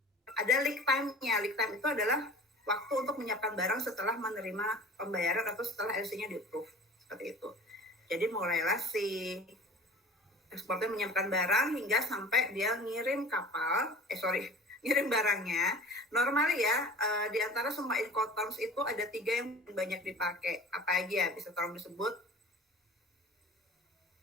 ada lead time-nya. Lead time itu adalah waktu untuk menyiapkan barang setelah menerima pembayaran atau setelah LC-nya di-approve. Seperti itu. Jadi mulailah si eksportir menyiapkan barang hingga sampai dia ngirim ngirim barangnya. Normal ya, di antara semua Incoterms itu ada 3 yang banyak dipakai. Apa aja? Bisa tolong disebut?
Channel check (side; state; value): both; normal; correlation 0.42